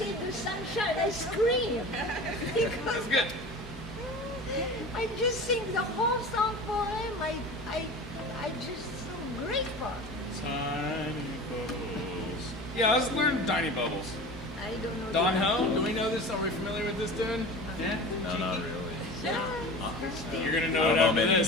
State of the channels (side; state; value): both; normal; correlation 0.35